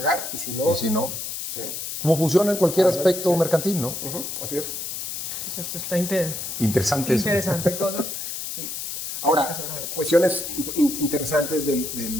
y si no... ¿Y si no? Sí. Como funciona en cualquier aspecto mercantil, ¿no? Así es. Eso está Interesante eso. interesante cosa. Sí. Ahora, cuestiones interesantes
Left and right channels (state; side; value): noise; left; hiss, 6 dB below the sound